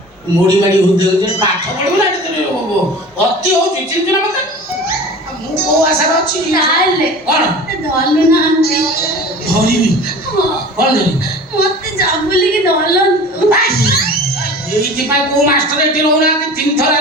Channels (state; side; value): normal; both; correlation 0.39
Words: ମୁଢି ମାଡି ହଉଛନ୍ତି ପାଠ ପଢିବୁ ନା ଅତି ହଉଛି ଚିନ୍ତା ନା ମତେ ମୁଁ କୋଉ ଆଶାରେ ଅଛି ତାହେଲେ କଣ ଧରଲୁ ନାହାନ୍ତି ଧରିବି କଣ ଧରିବି ମତେ ଯାବୁଲିକି ଧରଲନ୍ତୁ ଏଇଥିପାଇଁ କୋଉ ମାଷ୍ଟର ଏଠି ରହୁନାହାନ୍ତି 3 ଥର